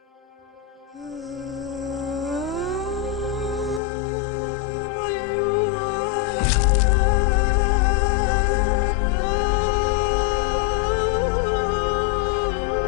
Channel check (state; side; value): drops out; right; at 3.8 s